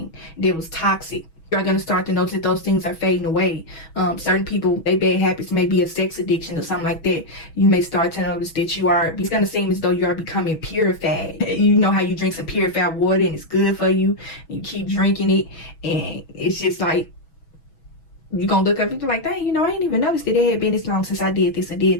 that was toxic. You're going to start to notice that those things are fading away. Certain people, their bad habits may be a sex addiction or something like that. You may start to notice that it's going to seem as though you are becoming purified. You know how you drink some purified water and it's good for you. You keep drinking it and it's just like, you're going to look up and be like, dang, you know, I didn't even notice that it had been this long since I did this or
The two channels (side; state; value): right; late; 6.2 ms